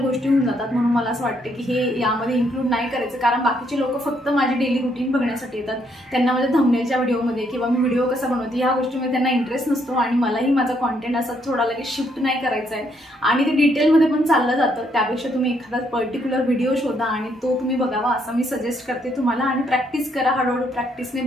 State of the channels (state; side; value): normal; both; correlation 0.72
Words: होऊन जातात, म्हणून मला असं वाटतं की हे यामध्ये इन्क्लूड नाही करायचं, कारण बाकीचे लोक फक्त माझी डेली रुटीन बघण्यासाठी येतात. त्यांना माझ्या थंबनेलच्या व्हिडिओमध्ये किंवा मी व्हिडिओ कसा बनवते ह्या गोष्टीमध्ये त्यांना इंटरेस्ट नसतो आणि मलाही माझा कॉन्टेंट असा थोडा लगेच शिफ्ट नाही करायचा आहे आणि ते डिटेलमध्ये पण चाललं जातं. त्यापेक्षा तुम्ही एखादा पर्टिक्युलर व्हिडिओ शोधा आणि तो तुम्ही बघावा असं मी सजेस्ट करते तुम्हाला आणि प्रॅक्टिस करा. हळूहळू प्रॅक्टिसने